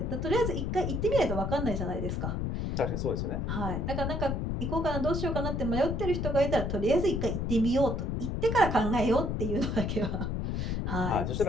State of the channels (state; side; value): noise; left; rumble, 1 dB below the sound